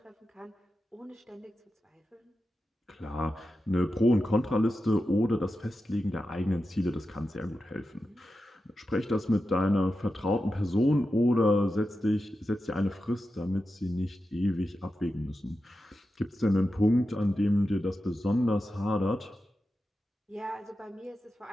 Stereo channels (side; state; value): both; normal; correlation 0.91